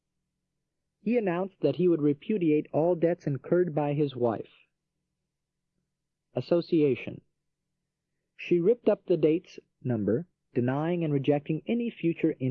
He announced that he would repudiate all debts incurred by his wife. Association. She ripped up the date's number, denying and rejecting any future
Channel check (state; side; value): identical; both; correlation 1.00